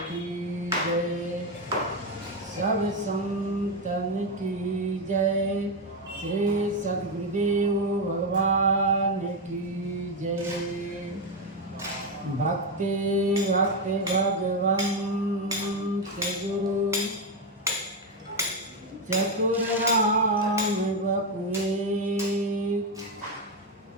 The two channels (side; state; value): both; normal; correlation 0.08